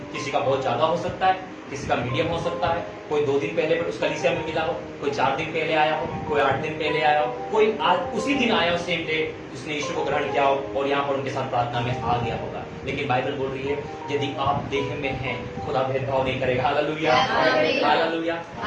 किसी का बहुत ज्यादा हो सकता है, किसी का मीडियम हो सकता है। कोई 2 दिन पहले उस कलीसिया में मिला हो, कोई 4 दिन पहले आया हो, कोई 8 दिन पहले आया हो, कोई आज उसी दिन आया हो, सेम डे उसने यीशु को ग्रहण किया हो और यहाँ पर उनके साथ प्रार्थना में आ गया होगा। लेकिन बाइबल बोल रही है यदि आप देह में हैं खुदा भेदभाव नहीं करेगा। Hallelujah, hallelujah.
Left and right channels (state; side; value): identical; both; correlation 1.00